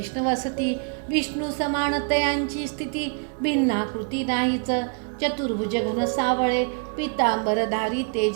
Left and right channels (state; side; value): quieter; left; 37.3 dB